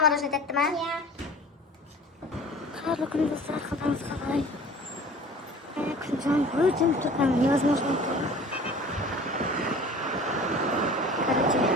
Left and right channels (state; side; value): normal; both; correlation 0.44